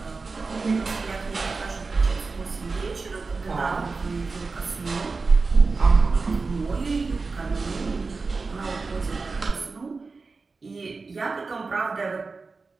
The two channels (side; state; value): left; quieter; 4.2 dB